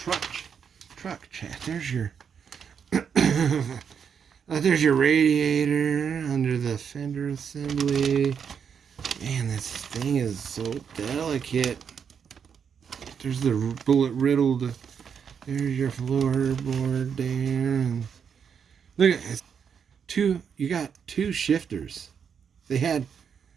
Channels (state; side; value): quieter; left; 7.1 dB